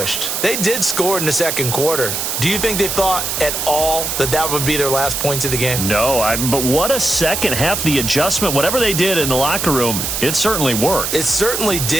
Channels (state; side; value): noise; right; hiss, 2 dB below the sound